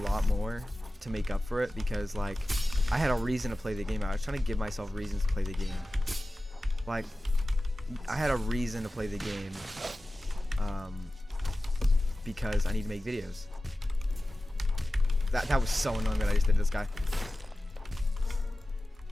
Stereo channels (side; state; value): both; normal; correlation 0.95